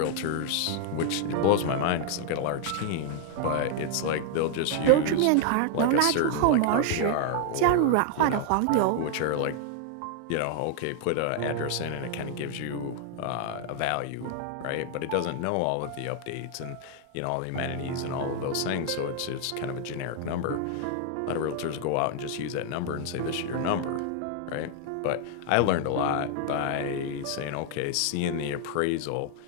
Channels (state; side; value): different; both; correlation 0.00